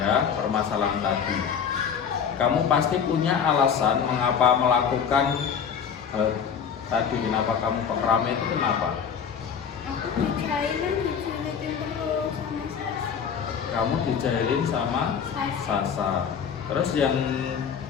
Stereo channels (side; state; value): right; quieter; 7.2 dB